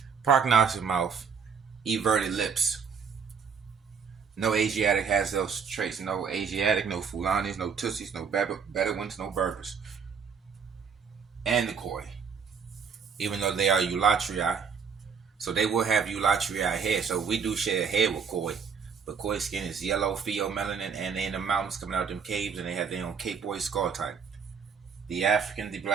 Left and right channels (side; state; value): left; quieter; 6.3 dB